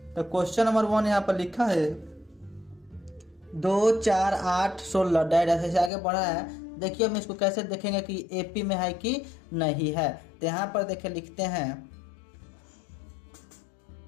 तो क्वेश्चन नंबर 1 यहाँ पर लिखा है 2, 4, 8, 16 डायरेक्ट ऐसे आगे बढ़ा है। देखिए हम इसको कैसे देखेंगे कि एपी में है कि नहीं है। तो यहाँ पर देखिए लिखते हैं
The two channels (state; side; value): drops out; right; at 5.9 s